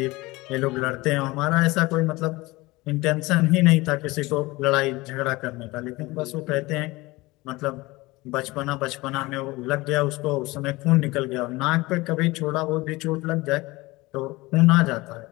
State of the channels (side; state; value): right; quieter; 21.5 dB